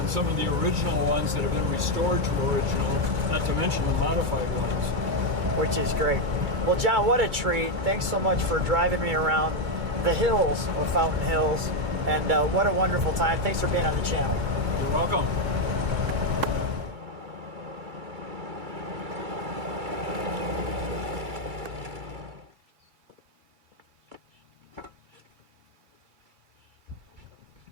some of the original ones that have been restored to original, not to mention the modified ones. Which is great. Well, John, what a treat. Thanks so much for driving me around the hills of Fountain Hills. And what a wonderful time. Thanks for being on the channel. You're welcome.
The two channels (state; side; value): late; left; 2.3 ms